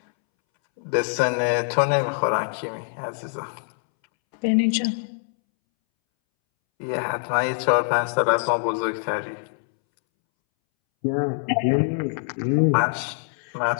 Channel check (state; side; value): silent; right; 63 dB below the other